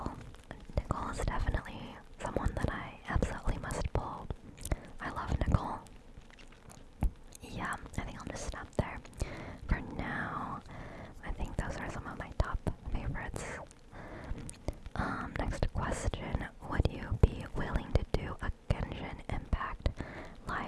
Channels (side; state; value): both; identical; correlation 1.00